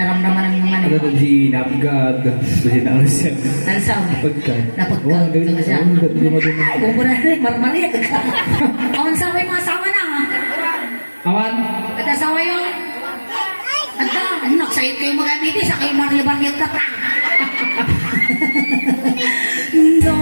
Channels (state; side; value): inverted; both; correlation -1.00